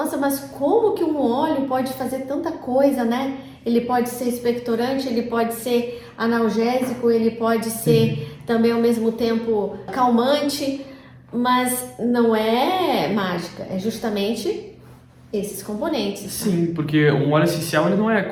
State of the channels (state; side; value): identical; both; correlation 1.00